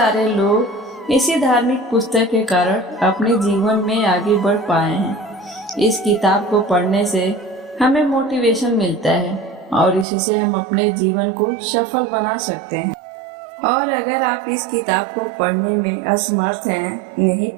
लोग इसी धार्मिक पुस्तक के कारण अपने जीवन में आगे बढ़ पाए हैं। इस किताब को पढ़ने से हमें मोटिवेशन मिलता है और इसी से हम अपने जीवन को सफल बना सकते हैं। और अगर आप इस किताब को पढ़ने में असमर्थ हैं, नहीं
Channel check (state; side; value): drops out; left; at 10.1 s